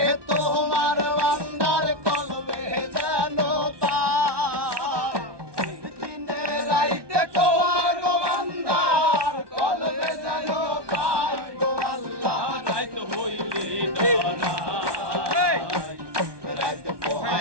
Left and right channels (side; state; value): left; late; 1.2 ms